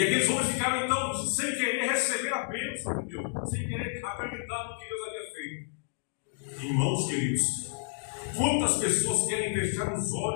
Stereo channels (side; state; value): right; silent; digital silence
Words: aqueles homens ficaram então sem querer receber a bênção de Deus, sem querer acreditar no que Deus havia feito. Irmãos queridos, quantas pessoas querem fechar os